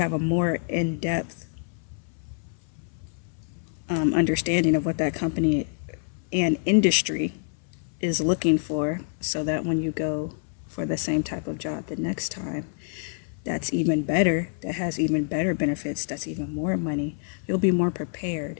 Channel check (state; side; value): silent; right; 58 dB below the other